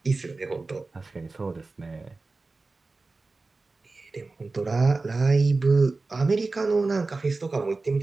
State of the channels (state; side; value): quieter; left; 3.6 dB